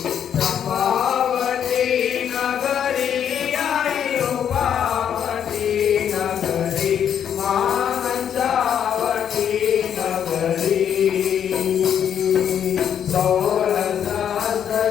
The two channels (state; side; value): quieter; right; 8.8 dB